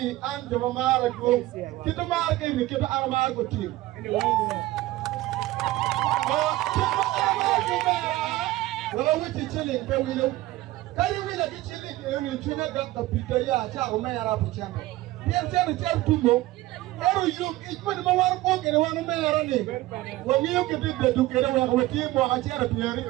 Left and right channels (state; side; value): quieter; left; 17.4 dB